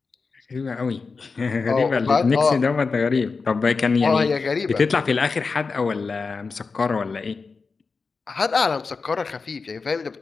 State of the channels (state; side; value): quieter; right; 4.6 dB